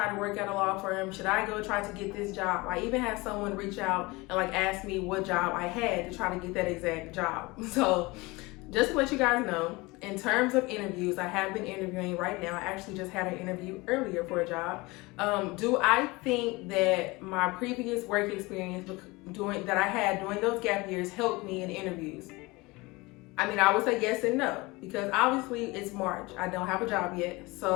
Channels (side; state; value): right; quieter; 23.3 dB